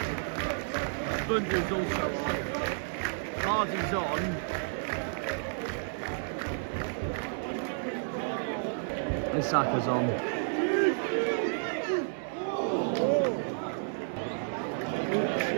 Bundy's also on. Hardy's on. Isaka's on.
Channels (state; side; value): silent; left; 57 dB below the other